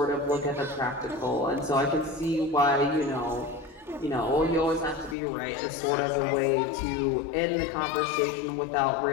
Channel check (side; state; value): right; drops out; at 5.2 s